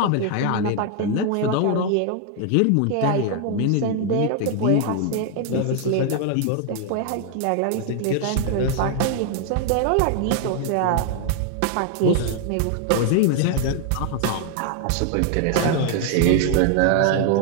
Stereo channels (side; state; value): both; different; correlation 0.00